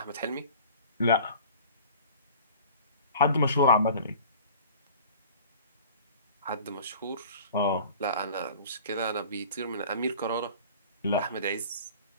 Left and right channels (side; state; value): both; inverted; correlation -0.44